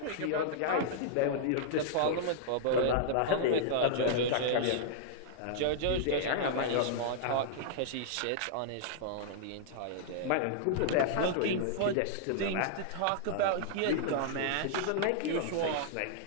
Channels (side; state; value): both; different; correlation -0.01